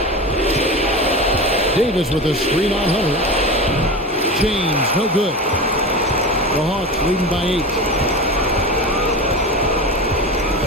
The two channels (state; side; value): normal; both; correlation 0.27